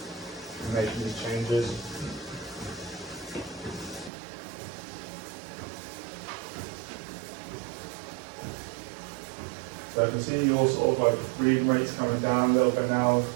and making these changes. So I can see your sort of like breathing rates coming down a little bit now,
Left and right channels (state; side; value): drops out; left; at 4.1 s